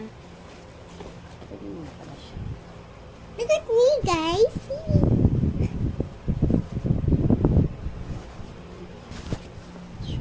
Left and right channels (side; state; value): both; identical; correlation 1.00